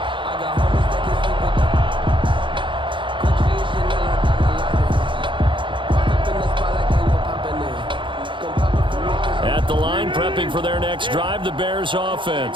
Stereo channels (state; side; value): late; left; 0.24 ms